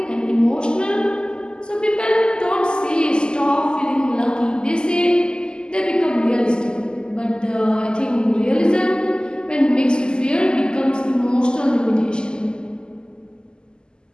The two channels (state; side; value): late; right; 0.047 ms